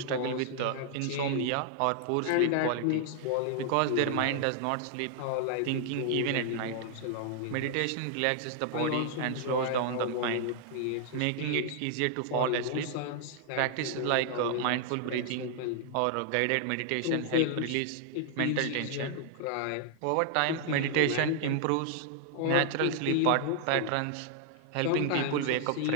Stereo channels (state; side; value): different; both; correlation -0.01